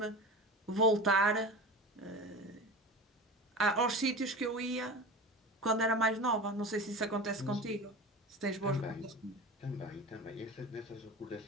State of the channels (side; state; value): both; normal; correlation 0.30